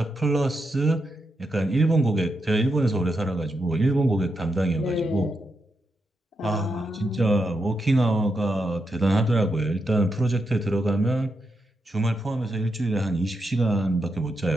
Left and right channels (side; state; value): both; normal; correlation 0.84